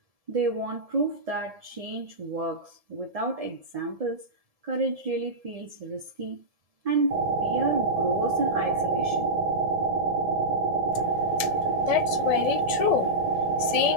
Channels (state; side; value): late; left; 1.7 ms